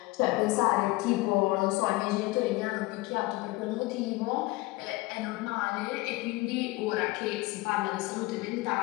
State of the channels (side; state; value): right; quieter; 21.3 dB